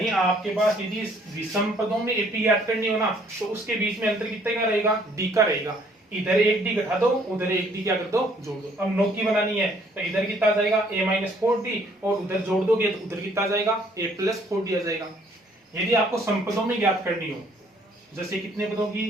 आपके पास यदि विषम पदों में एपी याद करनी हो ना, तो उसके बीच में अंतर कितने का रहेगा, डी का रहेगा। इधर एक डी घटा दो, उधर एक डी क्या कर दो, जोड़ दो। अब 9 की बनानी है तो इधर कितना आ जाएगा, ए माइनस 4d, और उधर जोड़ दोगे तो उधर कितना आ जाएगा, ए प्लस 4d आ जाएगा। यदि आपको समपदों में ज्ञात करनी हो, जैसे कितने पदों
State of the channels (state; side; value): normal; both; correlation 0.62